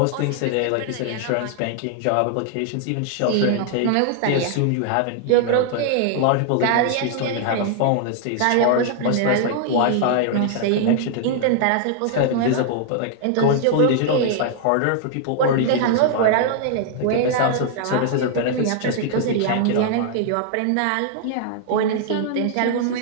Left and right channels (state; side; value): different; both; correlation 0.00